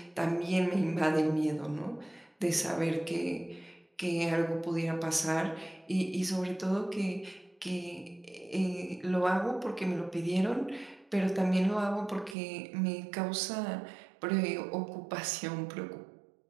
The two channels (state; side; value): drops out; left; at 12.4 s